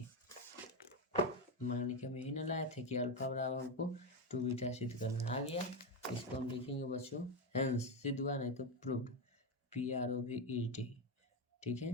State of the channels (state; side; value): normal; both; correlation 0.11